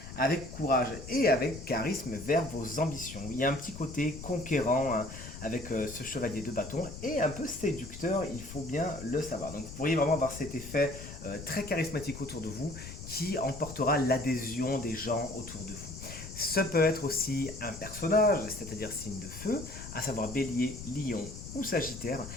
avec courage et avec charisme vers vos ambitions. Il y a un petit côté conquérant hein, avec ce chevalier de bâton et un peu séducteur, il faut bien le savoir. Donc vous pourriez vraiment avoir cet effet très charismatique autour de vous qui emportera l'adhésion des gens autour de vous. Ce peut être aussi un personnage, c'est-à-dire signe de feu, à savoir Bélier, Lion ou Sagittaire,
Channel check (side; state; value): left; noise; rumble, 12 dB below the sound